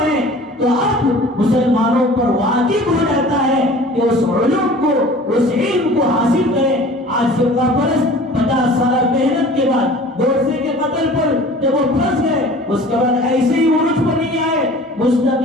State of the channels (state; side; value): normal; both; correlation 0.45